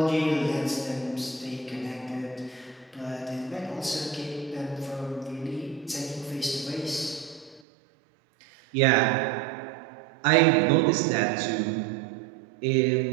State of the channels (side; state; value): left; drops out; at 7.6 s